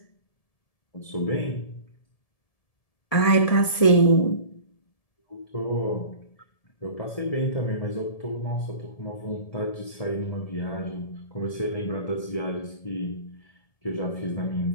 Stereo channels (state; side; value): late; right; 1.7 ms